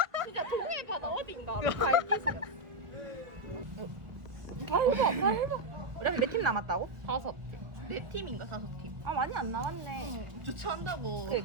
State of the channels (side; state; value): left; late; 1.6 ms